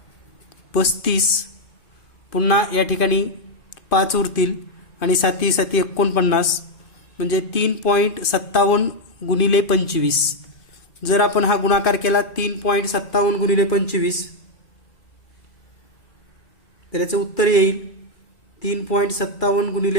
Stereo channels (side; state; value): right; late; 2.5 ms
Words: 35, पुन्हा या ठिकाणी 5 उरतील आणि 7 7 49, म्हणजे 3.57 गुणिले 25. जर आपण हा गुणाकार केला 3.57 गुणिले 25 तर याचं उत्तर येईल 3.57